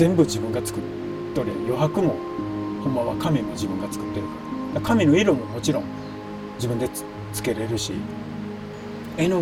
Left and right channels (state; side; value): identical; both; correlation 1.00